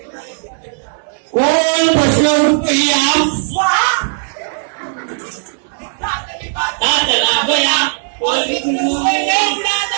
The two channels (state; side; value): silent; left; digital silence